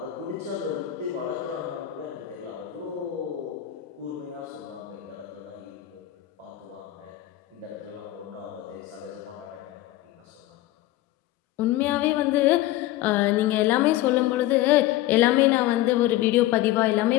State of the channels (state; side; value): quieter; right; 15.2 dB